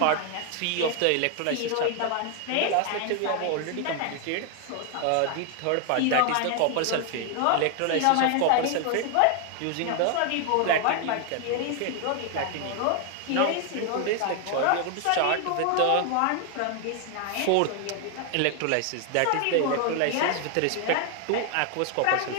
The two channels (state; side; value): different; both; correlation 0.00